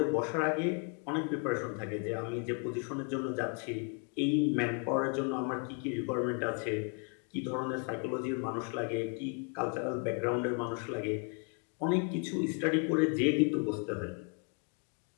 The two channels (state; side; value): quieter; right; 36.4 dB